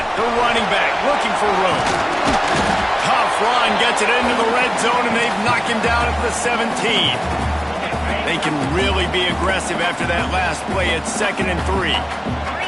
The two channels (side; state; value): both; identical; correlation 1.00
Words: the running back looking for room. Tough run, gets it into the red zone, and they've knocked him down at the 17. They can really be aggressive after that last play at 2nd and 3.